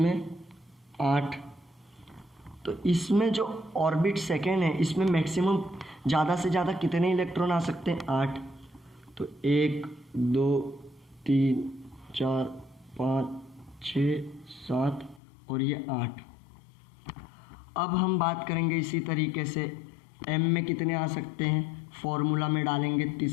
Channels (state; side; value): drops out; right; at 15.2 s